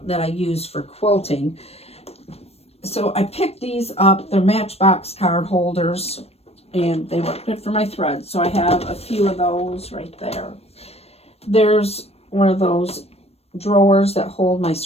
that I use for quilting. So I picked these up. They're Matchbox card holders. and they work good for my thread. So I have a few of those right there. There's one of those drawers that hold my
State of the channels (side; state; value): right; late; 0.29 ms